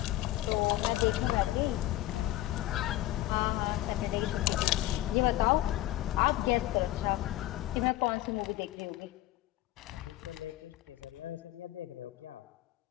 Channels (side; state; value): right; quieter; 15.4 dB